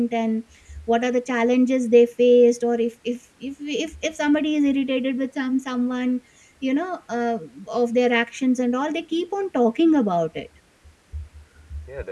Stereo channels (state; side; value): identical; both; correlation 1.00